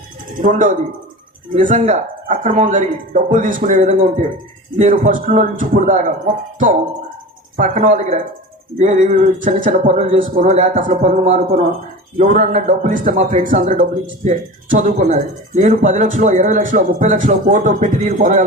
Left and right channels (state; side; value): normal; both; correlation 0.33